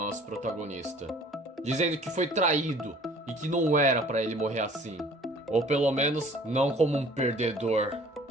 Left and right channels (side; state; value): both; normal; correlation 0.51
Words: protagonista, dizendo que foi traído e que não era pra ele morrer assim, ou pelo menos não como um perdedor.